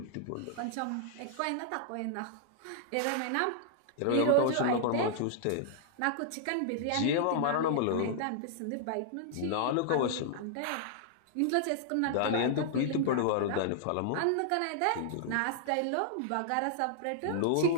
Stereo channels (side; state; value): both; different; correlation -0.01